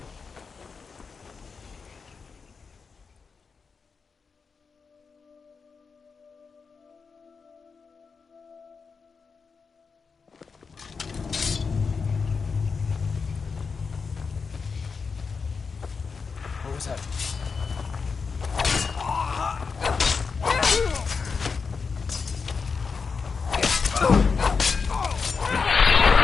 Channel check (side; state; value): right; quieter; 5.2 dB